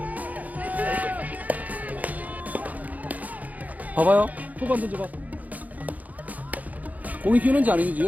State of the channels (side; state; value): left; late; 0.077 ms